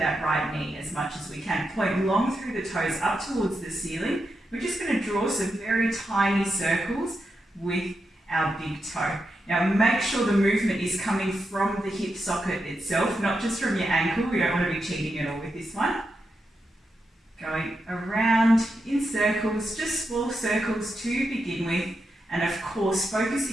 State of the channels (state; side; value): normal; both; correlation 0.86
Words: right knee as much as we can. Point long through the toes up towards the ceiling. We're just going to draw some very tiny circles with our big toe. Now make sure the movement is coming from the hip socket itself, not just from your ankle. We don't want to be cheating at all with this one. Going around in circles, just small circles to begin with, and of course